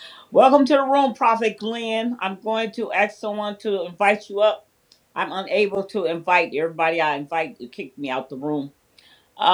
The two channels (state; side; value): identical; both; correlation 1.00